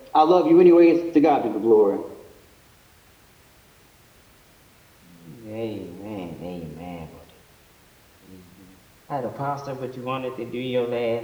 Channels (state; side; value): identical; both; correlation 1.00